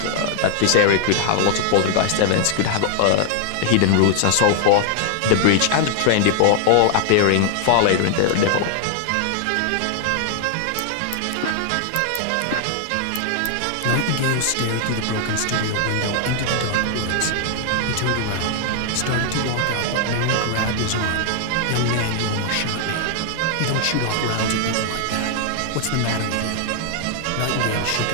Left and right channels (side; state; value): both; different; correlation 0.00